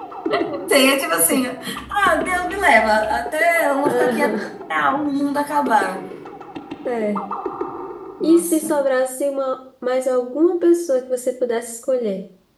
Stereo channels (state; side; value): identical; both; correlation 1.00